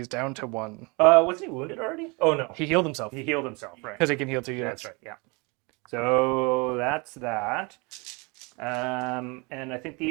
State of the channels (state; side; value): quieter; left; 28.9 dB